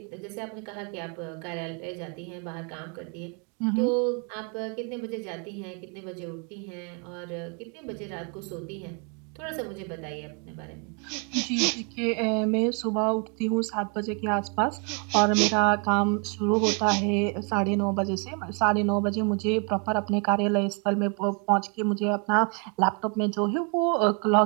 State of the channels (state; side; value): quieter; left; 37.0 dB